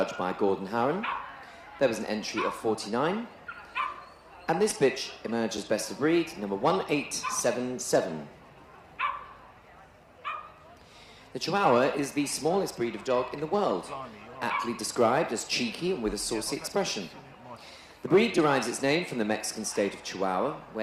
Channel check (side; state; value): both; identical; correlation 1.00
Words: by Gordon Harron. There was an entry of 49. And this bitch emerged as best of breed, number 1877. The Chihuahua is the smallest breed of dog in the world, aptly described as cheeky and with a saucy expression. The breed derives its name from the Mexican state of Chihuahua,